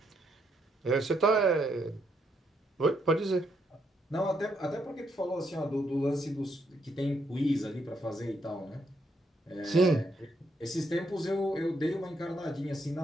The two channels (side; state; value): both; normal; correlation 0.76